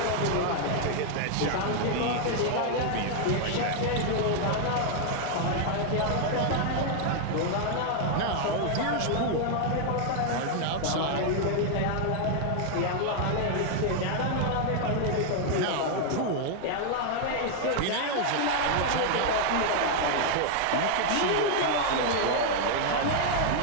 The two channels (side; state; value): both; different; correlation 0.00